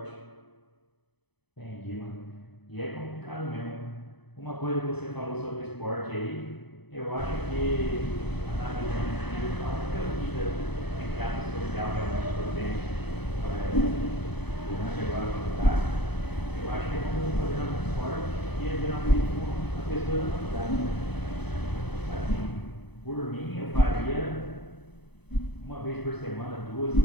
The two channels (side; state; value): right; late; 0.98 ms